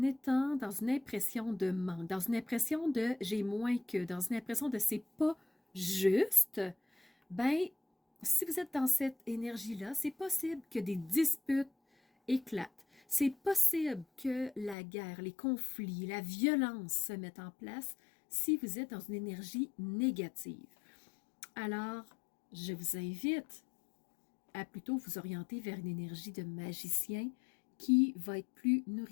étant dans une impression de manque, dans une impression de j'ai moins que, dans une impression de c'est pas juste, ben si vous êtes dans cette énergie-là, c'est possible que des disputes éclatent. C'est possible que la guerre, les conflits, la violence se mettent en place si vous êtes dans une énergie négative. Alors, je vous invite à plutôt vous orienter vers une énergie de magicien qui va être plus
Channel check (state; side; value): drops out; right; at 14.8 s